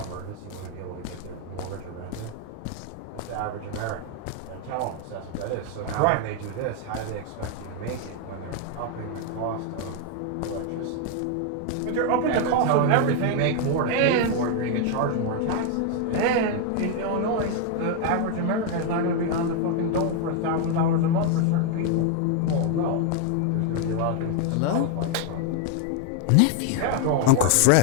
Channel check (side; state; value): both; different; correlation 0.00